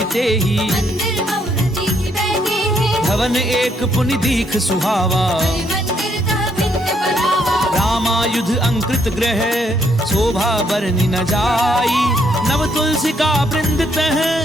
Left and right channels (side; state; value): both; normal; correlation 0.72